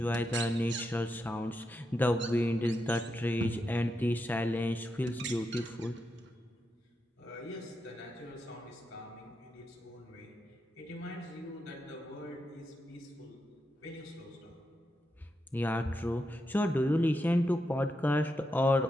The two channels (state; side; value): normal; both; correlation 0.85